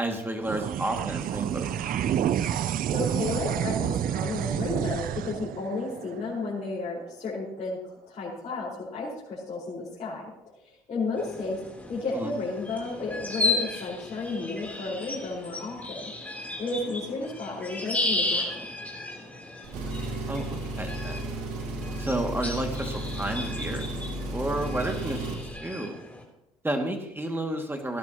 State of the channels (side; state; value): both; normal; correlation 0.51